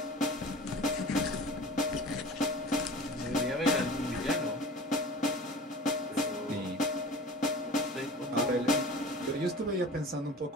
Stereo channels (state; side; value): normal; both; correlation 0.39